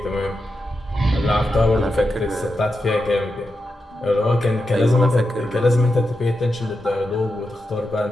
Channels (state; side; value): normal; both; correlation 0.88